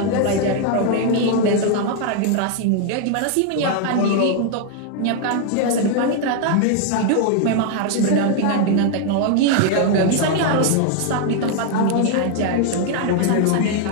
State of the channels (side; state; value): both; different; correlation 0.00